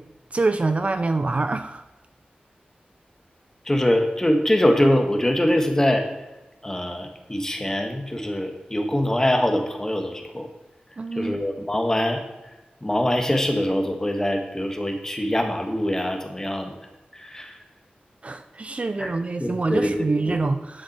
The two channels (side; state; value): both; normal; correlation 0.95